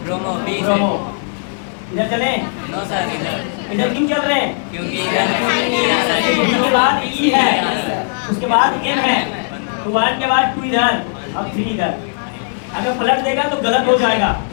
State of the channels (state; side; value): silent; right; 63 dB below the other